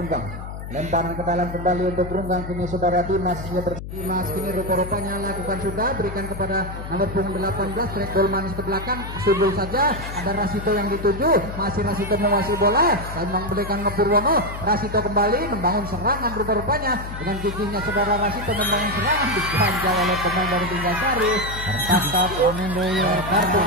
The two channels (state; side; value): noise; left; hum, 9 dB below the sound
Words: Lemparan ke dalam kembali untuk Gerungang, kini saudara Dimas Dimas kini rupa-rupanya lakukan sudah, berikan kepada nomor punggung 18, track ball manis ke belakang, sudul saja, ada Rasito yang dituju, masih Rasito menguasai bola dan memberikan ke Purwono. Rasito kembali membangun serangan, rupa-rupanya dengan giginya saudara Rasito membangun serangan, diganjal oleh pemain dari Liga Sari, tertangkap kartu